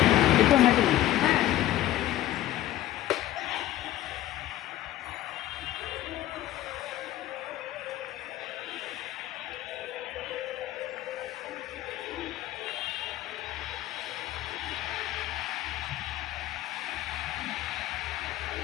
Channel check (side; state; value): right; quieter; 14.2 dB